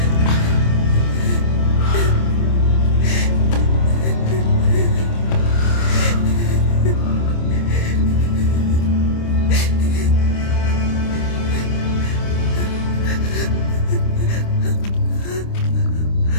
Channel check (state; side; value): late; right; 26 ms